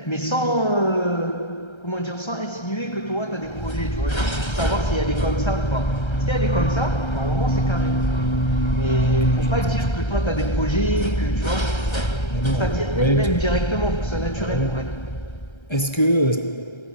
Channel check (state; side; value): late; right; 1.3 ms